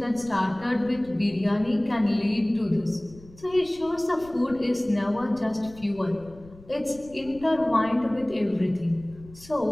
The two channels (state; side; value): noise; left; rumble, 22 dB below the sound